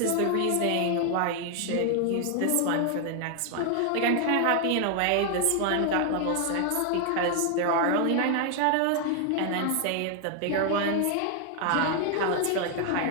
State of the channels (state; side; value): different; both; correlation 0.00